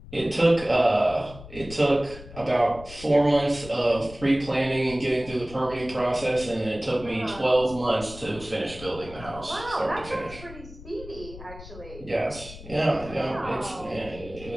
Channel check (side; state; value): left; noise; rumble, 16 dB below the sound